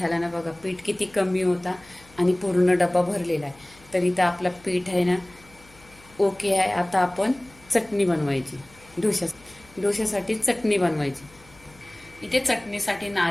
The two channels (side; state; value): left; noise; hum, 26 dB below the sound